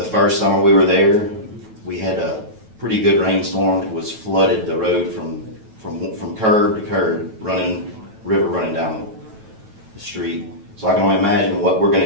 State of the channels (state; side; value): late; left; 9.2 ms